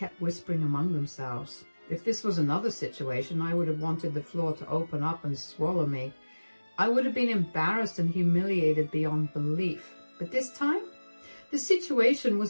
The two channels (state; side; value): inverted; both; correlation -1.00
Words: whispering among themselves. If this was another situation, I would have wanted the floor to open up and swallow me. I would have been embarrassed and humiliated beyond belief. But this time, the situation